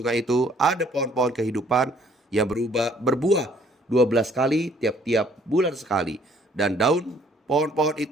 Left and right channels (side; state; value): both; normal; correlation 0.60